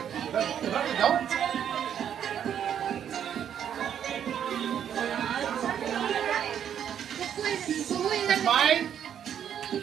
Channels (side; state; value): left; quieter; 9.1 dB